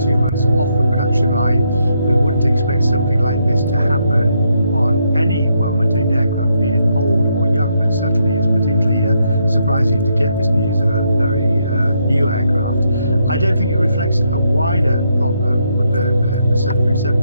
2 months off the production line. We wouldn't expect something like this to happen on any well-maintained aircraft, be it old or young, but certainly it's particularly surprising to get this news of a very new aircraft. I don't think it reflects a wider problem with the 737.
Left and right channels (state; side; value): inverted; both; correlation -0.77